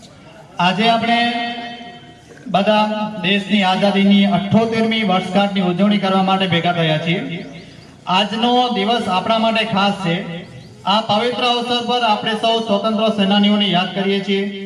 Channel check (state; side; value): identical; both; correlation 1.00